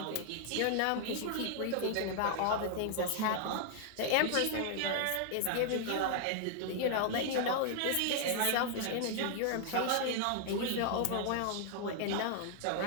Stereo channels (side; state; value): both; different; correlation 0.00